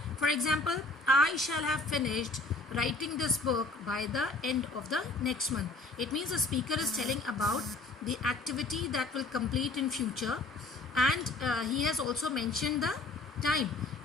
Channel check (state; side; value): quieter; right; 3.2 dB